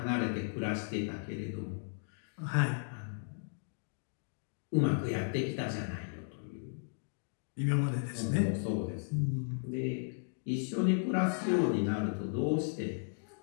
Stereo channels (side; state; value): right; silent; digital silence